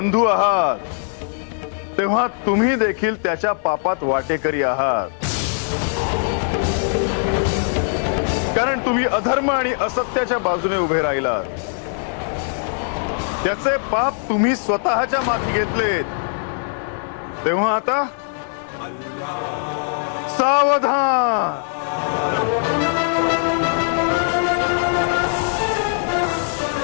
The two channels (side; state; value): right; silent; digital silence